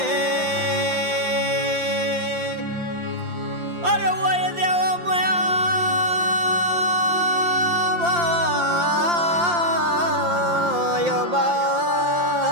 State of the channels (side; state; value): left; late; 5.8 ms